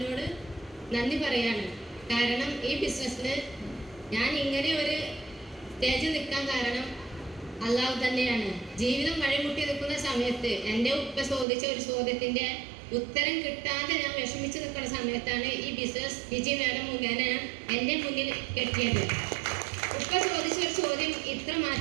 നന്ദി പറയാണ്. കാരണം ഈ ബിസിനസ്സിന് ഞാൻ ഇങ്ങനെ ഒരു സ്റ്റേജിൽ നിൽക്കാൻ കാരണം അള്ളാഹു തന്നെയാണ്. ജീവിതം വഴിമുട്ടി നിൽക്കുന്ന സമയത്ത് എൻ്റെ ഉപ്പ ചോദിച്ച ഒരു ചോദ്യത്തിൻ്റെ ഉത്തരം കിട്ടാതെ ഞാൻ വിഷമിച്ച് നിൽക്കുന്ന സമയത്താണ് ഈ ബിസിനസ് ജിജി മാഡം മുഖേന എൻ്റെ മുന്നിൽ കെട്ടിയത്. ഉപ്പ ചോദിച്ച ഒരു ചോദ്യം ഇത്ര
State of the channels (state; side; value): drops out; left; at 11.5 s